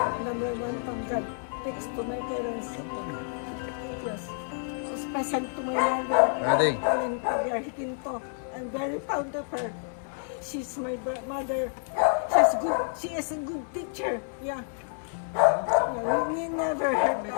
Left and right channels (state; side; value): silent; right; digital silence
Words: Number one from God. Thanks to my parents. Yes. Special to my mother. Ready? And Pagya Hikinto. I'm very proud of her. She's my mother. She's good. She is a good teacher. Yeah. Yeah, we never hurt